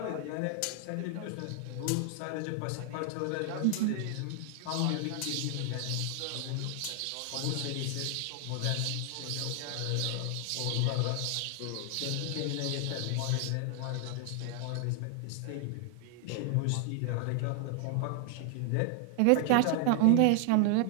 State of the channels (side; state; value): both; different; correlation 0.00